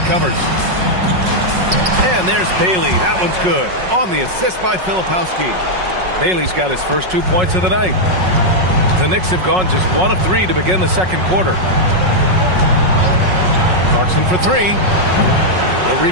covers. And there's Bailey. That one's good. On the assist by Filipowski. Bailey's got his first 2 points of the night. The Knicks have gone just 1 of 3 to begin the second quarter. Clarkson for 3. The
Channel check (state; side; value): late; left; 5.4 ms